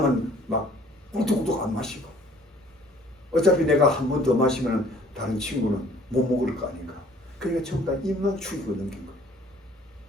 막 꿀뚝꿀뚝 안 마시고, 어차피 내가 한 번 더 마시면 다른 친구는 못 먹을 거 아닌가. 그러니까 전부 다 입만 죽이고 넘긴 거예요.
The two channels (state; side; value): normal; both; correlation 0.54